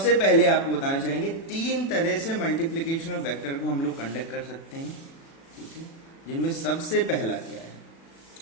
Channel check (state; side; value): late; right; 36 ms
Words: पहले आपको बताना चाहेंगे तीन तरह से मल्टीप्लिकेशन ऑफ वेक्टर को हम लोग कंडक्ट कर सकते हैं। ठीक है, जिनमें सबसे पहला क्या है,